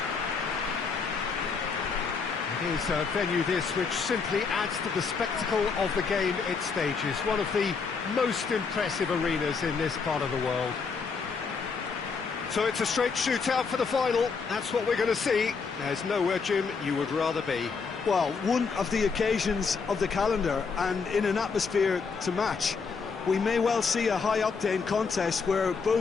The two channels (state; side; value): quieter; right; 5.2 dB